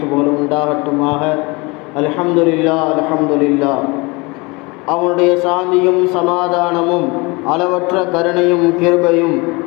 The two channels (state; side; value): quieter; right; 26.1 dB